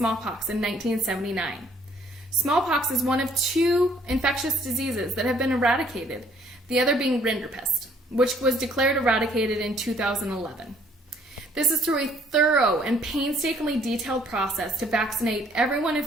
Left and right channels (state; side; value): normal; both; correlation 0.62